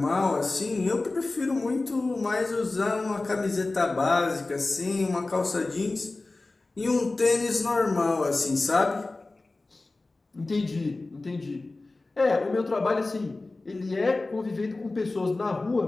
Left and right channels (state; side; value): quieter; right; 3.2 dB